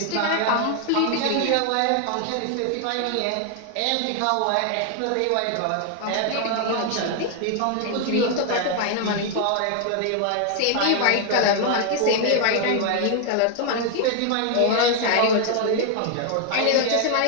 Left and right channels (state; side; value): different; both; correlation 0.00